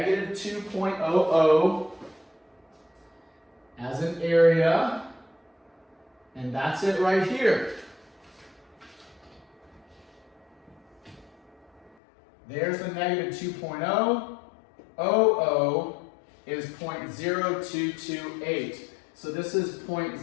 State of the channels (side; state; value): right; drops out; at 12.0 s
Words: 2.00 as an area. And that's it right here. There's the negative 2.0. 00 is 0.0228. So this is